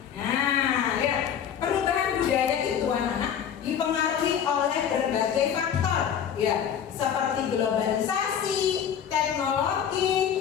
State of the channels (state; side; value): quieter; right; 8.6 dB